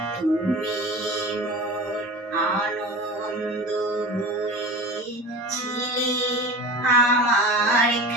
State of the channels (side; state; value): both; normal; correlation 0.33